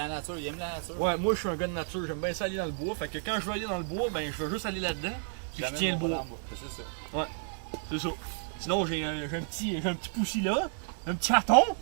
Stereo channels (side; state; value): left; silent; 57 dB below the other